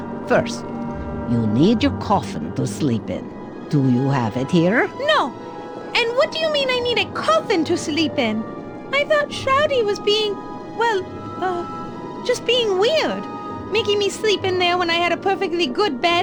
First, you need your coffin to sleep in. Do you have it here? No. And what do you mean I need a coffin to sleep in? I thought Shroudy was being, just being weird. Making me sleep in there when I had a perfectly good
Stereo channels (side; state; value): both; identical; correlation 1.00